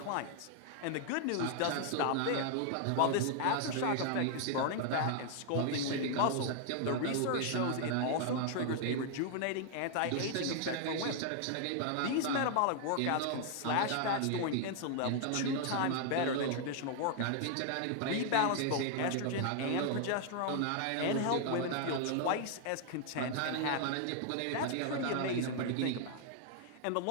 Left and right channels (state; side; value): different; both; correlation 0.00